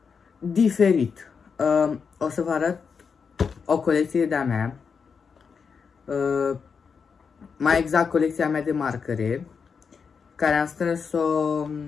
diferit. O să vă arăt o colecție de-a mea, mai exact colecția mea de marcare, care am strâns-o,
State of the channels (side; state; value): right; quieter; 5.9 dB